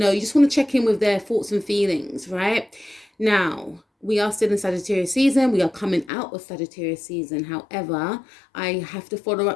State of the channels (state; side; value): drops out; right; at 6.1 s